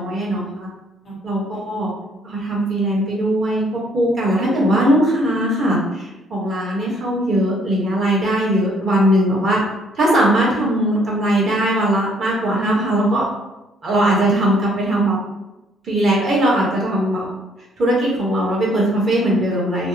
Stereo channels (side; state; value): both; normal; correlation 0.64